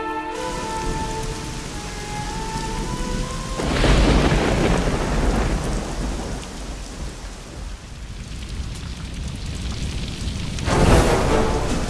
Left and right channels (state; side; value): identical; both; correlation 1.00